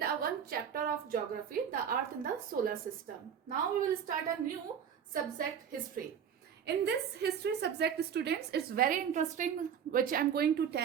one chapter of geography, the earth in the solar system. Now we will start a new subject, history. In this history subject, students, it's very interesting, which I'm going to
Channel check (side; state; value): left; quieter; 8.1 dB